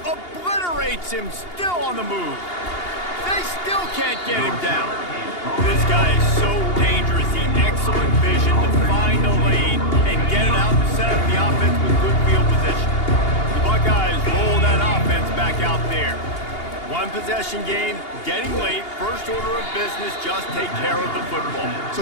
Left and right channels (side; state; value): right; late; 2.8 ms